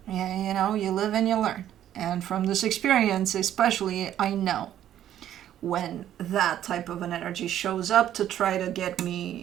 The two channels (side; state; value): left; quieter; 11.3 dB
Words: Yeah, you live and you learn. And from this experience, especially, I know when that type of an energy shows up to try to get